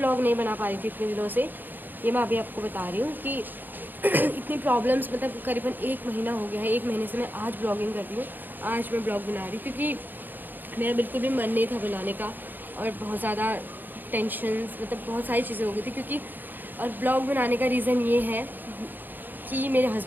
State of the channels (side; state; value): left; late; 0.089 ms